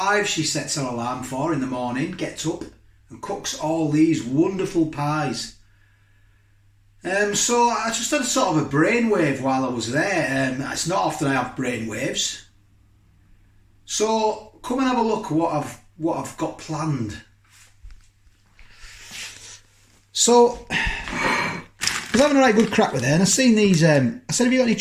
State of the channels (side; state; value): both; identical; correlation 1.00